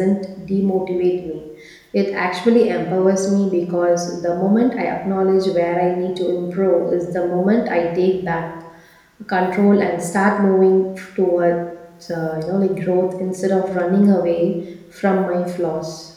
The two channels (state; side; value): identical; both; correlation 1.00